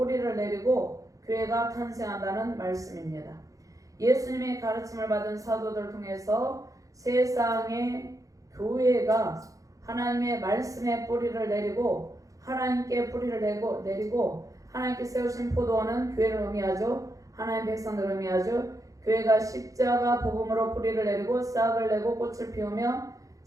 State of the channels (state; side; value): late; left; 0.16 ms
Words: 내리고 교회가 탄생한다는 말씀입니다. 예수님의 가르침을 받은 사도들을 통해서 세상의 교회가 하나님의 말씀에 뿌리를 내리고 하나님께 뿌리를 내리고 하나님께 세우신 포도원은 교회를 의미하죠. 하나님 백성들을 의미하죠. 교회가 십자가 복음으로 뿌리를 내리고 싹을 내고 꽃을 피우며